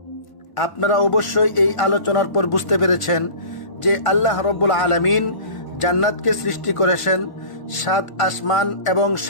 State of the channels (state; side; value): late; right; 1.1 ms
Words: আপনারা অবশ্যই এই আলোচনার পর বুঝতে পেরেছেন যে আল্লাহ রাব্বুল আলামিন জান্নাতকে সৃষ্টি করেছেন 7 আসমান এবং